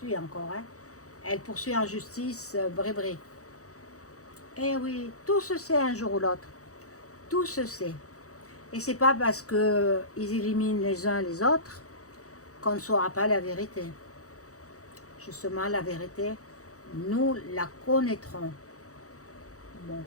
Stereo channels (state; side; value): late; right; 0.65 ms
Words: encore. Hein. Elle poursuit en justice Brébry. Eh oui, tout se sait un jour ou l'autre. Tout se sait. Et c'est pas parce qu'ils éliminent les uns les autres qu'on ne saura pas la vérité. Justement, la vérité, nous la connaîtrons. Bon.